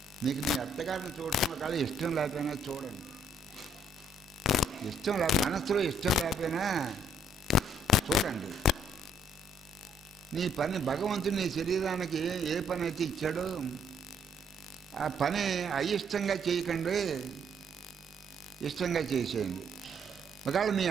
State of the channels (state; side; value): normal; both; correlation 0.67